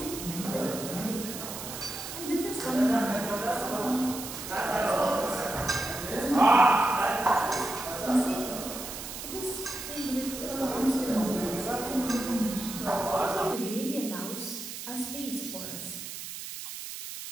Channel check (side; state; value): right; noise; hiss, 9 dB below the sound